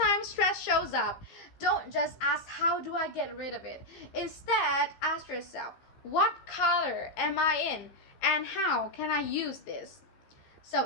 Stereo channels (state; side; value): late; right; 15 ms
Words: stress shows up, don't just ask, how do I get rid of it? Instead, ask yourself, what color am I in? And how can I use this?